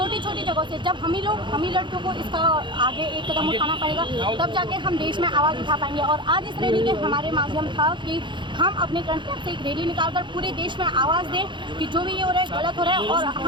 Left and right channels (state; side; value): late; left; 0.23 ms